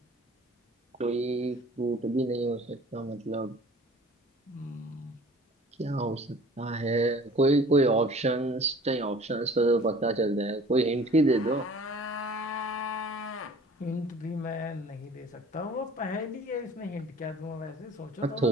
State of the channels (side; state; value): both; normal; correlation 0.48